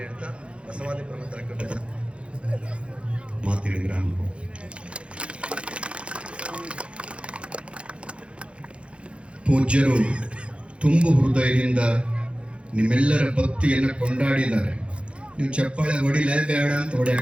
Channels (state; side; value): late; left; 0.059 ms